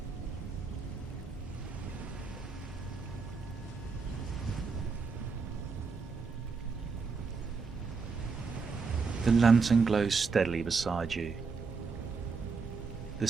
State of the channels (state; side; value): quieter; left; 4.8 dB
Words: The lantern glows steadily beside you. The